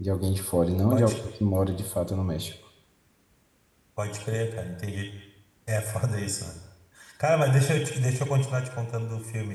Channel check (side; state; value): both; identical; correlation 1.00